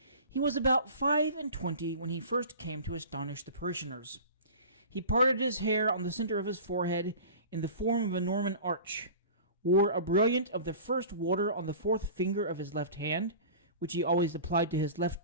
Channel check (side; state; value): both; inverted; correlation -0.39